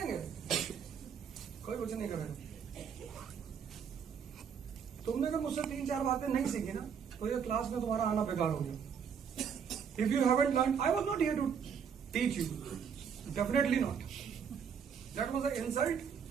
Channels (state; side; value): quieter; left; 7.1 dB